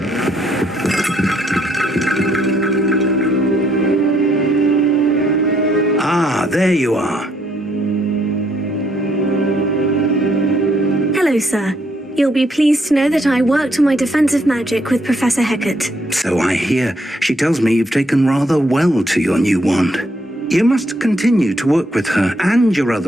There you are. Hello, sir. You'll be pleased to know that I worked on my defensive magic with Professor Hecat. So I hear. She tells me you've taken rather well to your new wand. You must continue to work with her and your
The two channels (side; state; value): both; normal; correlation 0.72